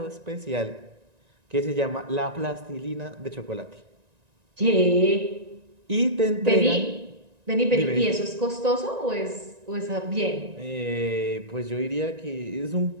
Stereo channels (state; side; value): late; left; 1.9 ms